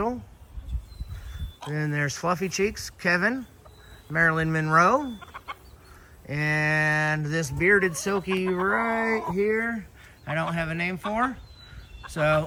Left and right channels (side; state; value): both; identical; correlation 1.00